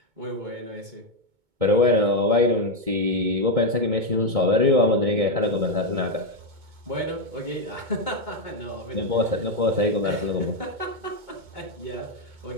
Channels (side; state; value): left; late; 2.2 ms